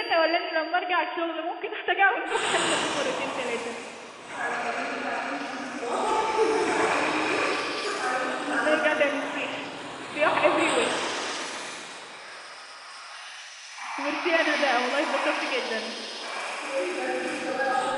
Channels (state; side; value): identical; both; correlation 1.00